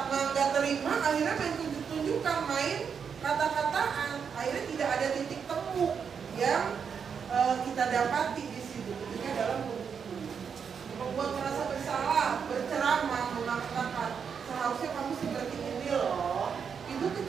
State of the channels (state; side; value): quieter; left; 6.7 dB